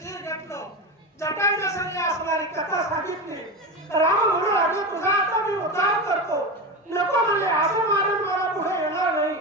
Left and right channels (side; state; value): both; normal; correlation 0.21